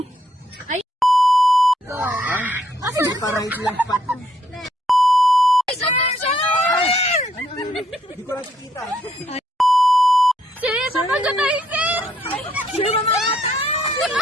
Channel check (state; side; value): normal; both; correlation 0.71